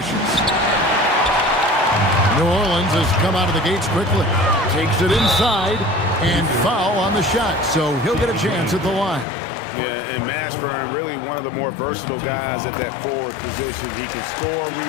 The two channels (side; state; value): right; drops out; at 9.2 s